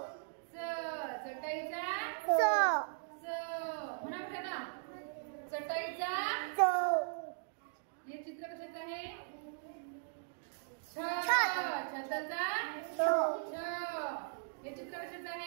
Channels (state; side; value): silent; left; digital silence